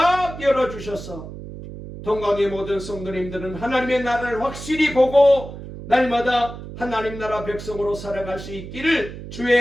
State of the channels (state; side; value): noise; right; hum, 12 dB below the sound